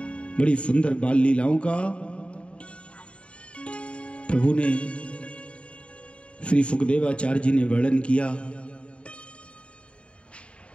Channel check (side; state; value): right; late; 0.059 ms